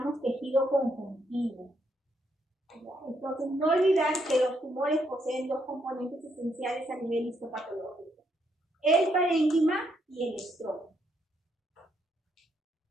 tejido conjuntivo. Entonces, no olvidar que los tumores poseen dos componentes esenciales a nivel histopatológico: el parénquima y el estroma.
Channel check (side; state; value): both; normal; correlation 0.76